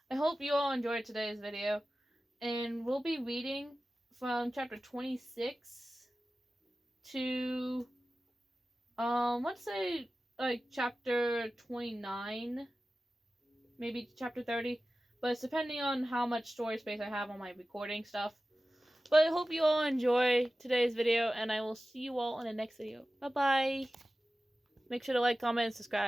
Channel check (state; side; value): normal; both; correlation 0.95